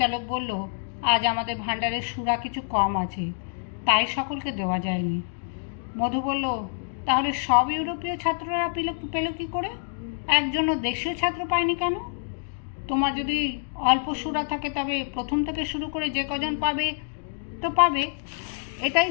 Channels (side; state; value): right; silent; digital silence